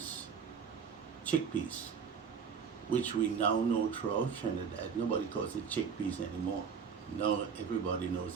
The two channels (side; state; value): left; quieter; 6.5 dB